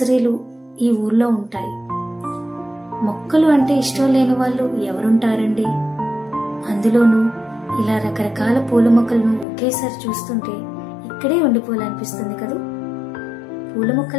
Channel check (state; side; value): drops out; right; at 9.5 s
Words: ఈ ఊర్లో ఉంటాయి. మొక్కలు అంటే ఇష్టం లేని వాళ్ళు ఎవరుంటారండి? అందులోనూ ఇలా రకరకాల పూల మొక్కలను ఒకేసారి చూస్తుంటే ఇక్కడే ఉండిపోవాలనిపిస్తుంది కదా. పూల